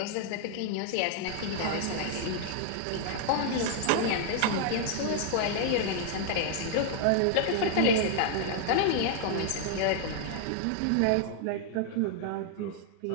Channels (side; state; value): both; different; correlation 0.00